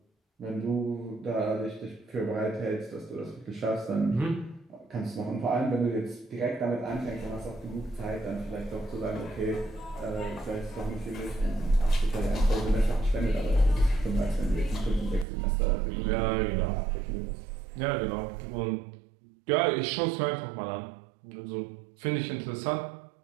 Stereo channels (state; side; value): drops out; left; at 15.2 s